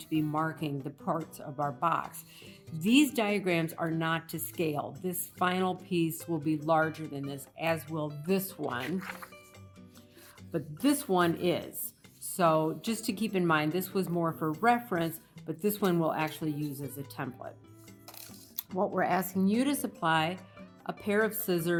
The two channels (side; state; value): both; identical; correlation 1.00